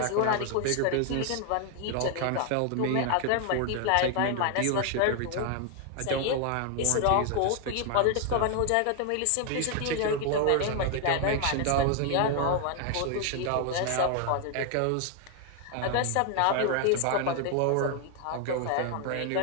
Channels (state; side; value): different; both; correlation 0.00